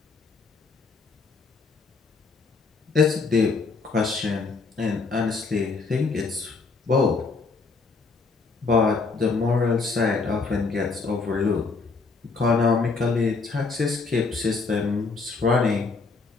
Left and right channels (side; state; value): right; quieter; 4.3 dB